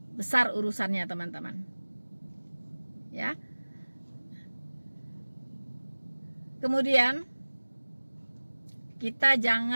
Besar urusannya, teman-teman. Ya. Kemudian kita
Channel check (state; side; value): inverted; both; correlation -1.00